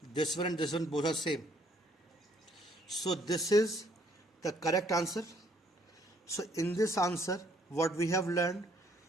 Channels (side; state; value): both; normal; correlation 0.65